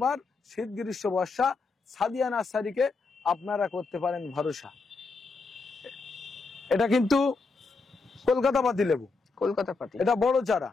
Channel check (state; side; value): quieter; right; 4.1 dB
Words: শীত গ্রীষ্ম বর্ষা সাদিয়া নার্সারিকে আপনারা করতে পারেন ভরসা। এটা কিন্তু কলকাতা পাতি লেবু, কলকাতা পাতি। এটা বড় চারা,